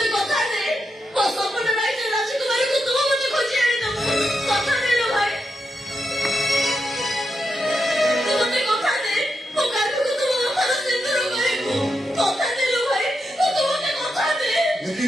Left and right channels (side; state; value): both; normal; correlation 0.85